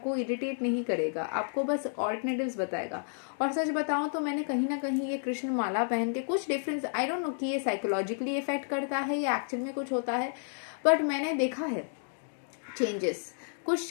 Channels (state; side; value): silent; right; digital silence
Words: इरिटेट नहीं करेगा, आपको बस ऑल्टरनेटिव्स बताएगा। और सच बताऊं तो मैंने कहीं ना कहीं ये कृष्ण माला पहन के कुछ डिफरेंस, आई डोंट नो कि ये साइकोलॉजिकली इफेक्ट करता है या एक्चुअल में कुछ होता है, बट मैंने देखा है चेंजेस।